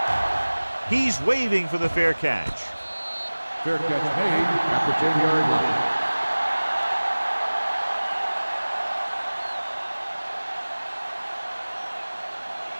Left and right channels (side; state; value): both; inverted; correlation -1.00